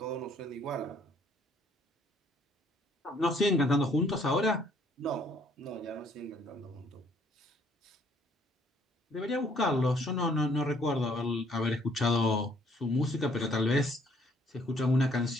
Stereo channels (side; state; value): both; normal; correlation 0.63